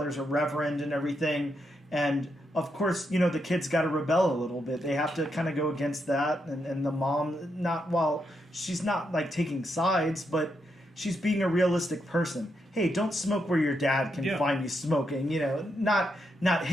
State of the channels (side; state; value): both; normal; correlation 0.81